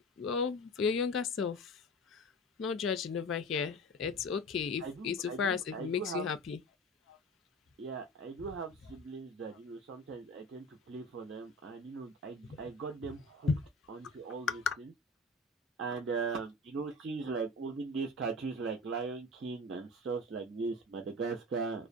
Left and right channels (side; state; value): both; normal; correlation 0.35